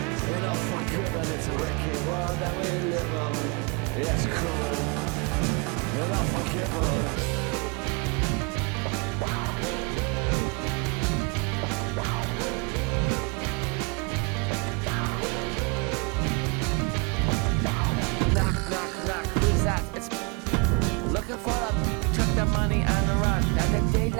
Enough for good, but it's a wicked world that we live in. It's cool. Enough for good. Looking for the took the money and the run. Now the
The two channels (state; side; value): quieter; left; 31.2 dB